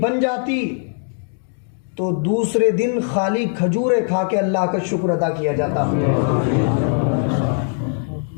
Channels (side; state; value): right; silent; 56 dB below the other